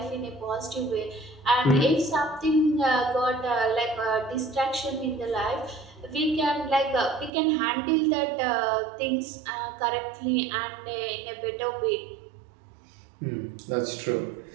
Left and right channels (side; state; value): left; drops out; at 7.3 s